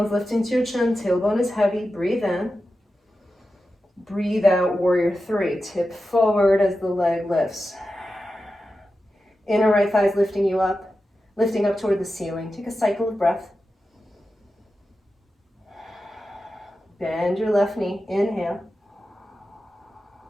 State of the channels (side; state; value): both; normal; correlation 0.92